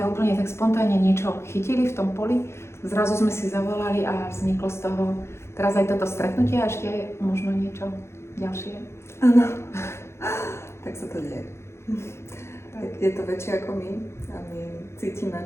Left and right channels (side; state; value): right; late; 0.13 ms